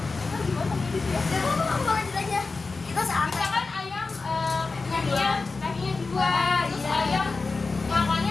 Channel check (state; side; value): quieter; right; 4.0 dB